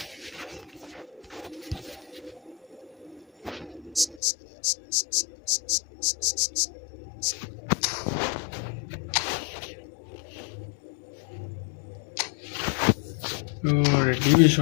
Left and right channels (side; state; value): right; drops out; at 4.2 s